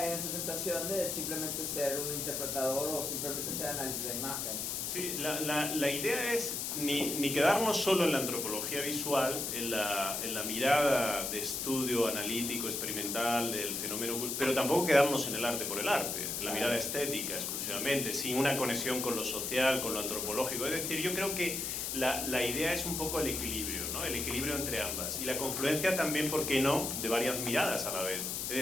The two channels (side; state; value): left; noise; hiss, 2 dB below the sound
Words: en esa tentación de simplemente ser un interpretador o simplemente ser análisis de imagen. Sí, la idea es ni quedarnos solo en la antropología visual, en la mirada de estudio analítico, experimental del fenómeno, pero tampoco quedarnos en el arte por el arte, en la mirada estética exclusivamente, sin una conexión con lo social, con lo antropológico. Es decir, yo creo que la idea es un poco el equilibrio, ¿no? El equilibrio entre ambas. Y la confluencia también, ¿por qué no?, de varias miradas a la vez. Es